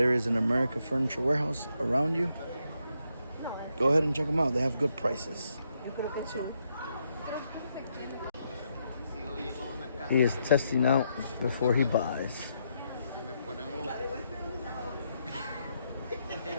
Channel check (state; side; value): inverted; both; correlation -0.79